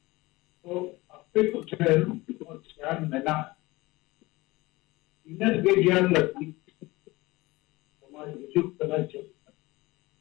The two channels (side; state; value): right; quieter; 21.1 dB